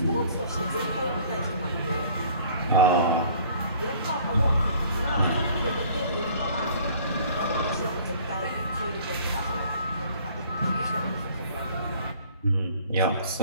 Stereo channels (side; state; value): both; inverted; correlation -0.53